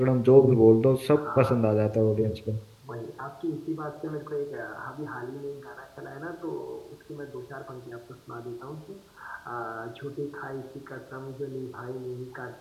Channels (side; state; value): both; identical; correlation 1.00